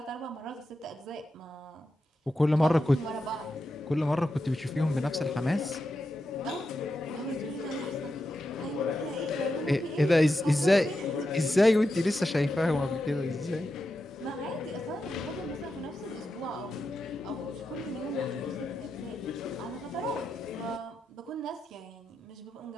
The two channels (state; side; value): normal; both; correlation 0.88